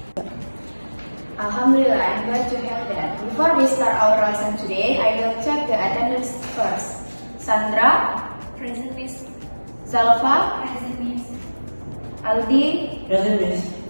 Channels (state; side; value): inverted; both; correlation -1.00